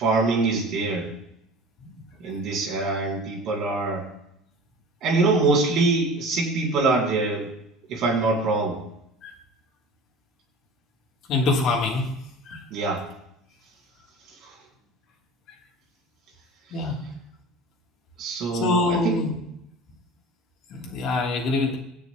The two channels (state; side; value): normal; both; correlation 0.39